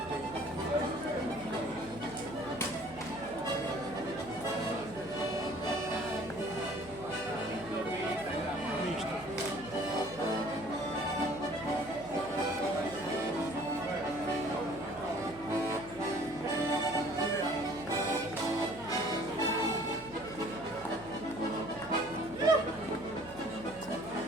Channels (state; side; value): noise; right; hum, 19 dB below the sound